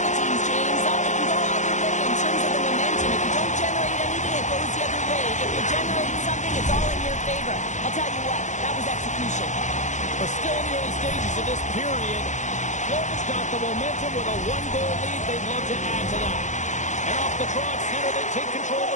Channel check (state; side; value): late; right; 0.35 ms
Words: favor. I'll tell you what, that was execution. We're still in the early stages of this period. Florida's got the momentum with a one-goal lead. They'd love to add to that. And off the draw at center, they take control